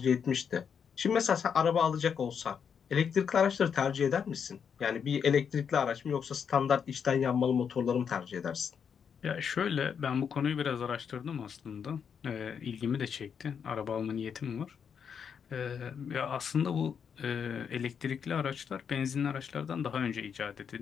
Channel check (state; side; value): quieter; right; 7.1 dB